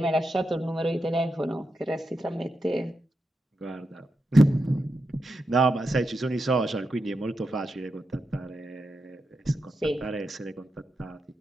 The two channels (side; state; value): both; normal; correlation 0.87